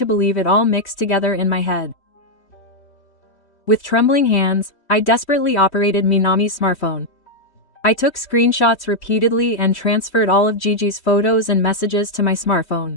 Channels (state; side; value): late; right; 3.1 ms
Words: believe it all mixed together in my head. With trembling hands, I desperately operated Minami's smartphone. I took screenshots repeatedly and transferred all of Gigi's photos and messages to my